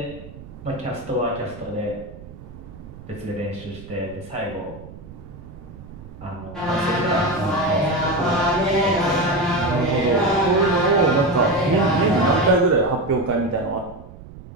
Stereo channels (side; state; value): right; noise; rumble, 17 dB below the sound